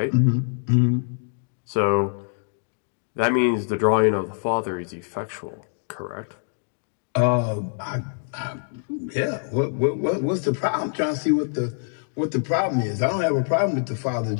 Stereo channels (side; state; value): right; silent; digital silence